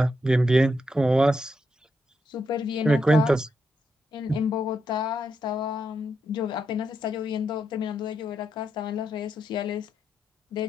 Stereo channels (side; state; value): both; normal; correlation 0.82